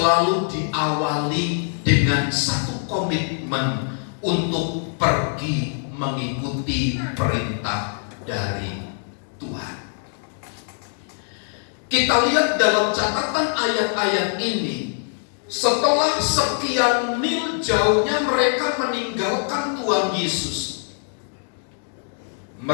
diawali dengan satu komitmen untuk pergi mengikuti perintah dari Tuhan. Kita lihat dalam catatan ayat-ayat ini, setelah sekian mil jauhnya mereka meninggalkan Tuhan Yesus,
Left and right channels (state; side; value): silent; right; 62 dB below the other